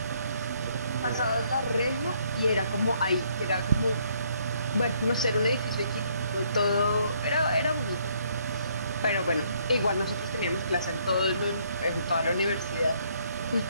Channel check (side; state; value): both; inverted; correlation -0.68